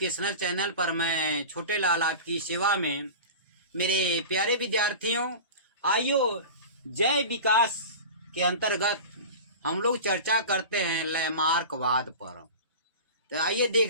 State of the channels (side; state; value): both; inverted; correlation -0.32